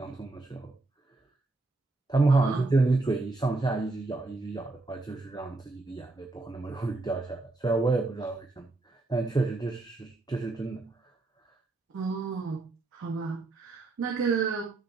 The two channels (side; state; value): left; quieter; 3.3 dB